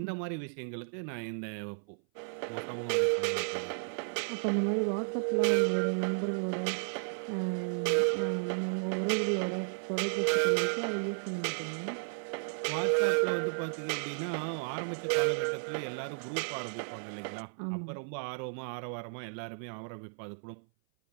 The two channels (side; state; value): left; silent; 56 dB below the other